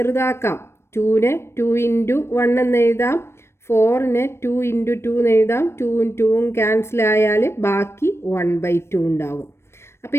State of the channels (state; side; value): late; right; 0.12 ms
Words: 2നെ 2 ഇൻറ്റു 1 എന്ന് എഴുതാം, 4നെ 2 ഇൻറ്റു 2 എന്ന് എഴുതാം. 2ഉം 2ഉം ക്യാൻസൽ ആയാൽ ബാക്കി 1/2 ഉണ്ടാകും. അപ്പോൾ